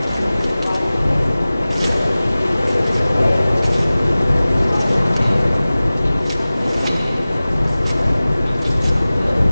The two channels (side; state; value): both; inverted; correlation -0.98